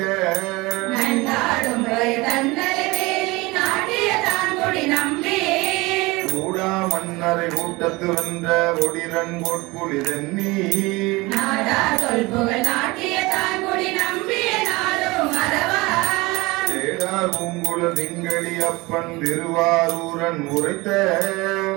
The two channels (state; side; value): quieter; left; 22.9 dB